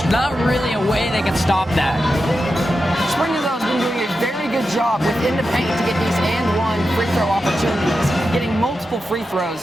not really a way they can stop that. Spring Hill has been doing a very good job within the paint to get these and-one free throw opportunities, getting multiple free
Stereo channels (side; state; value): both; normal; correlation 0.90